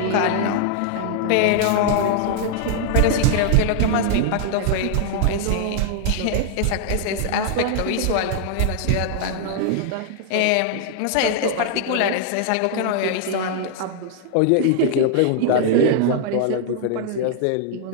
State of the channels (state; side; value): different; both; correlation 0.00